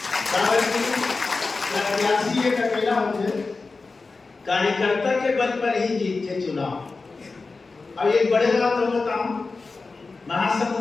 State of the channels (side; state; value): right; quieter; 4.0 dB